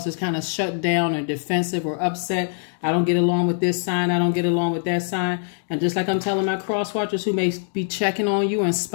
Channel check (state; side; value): silent; right; 63 dB below the other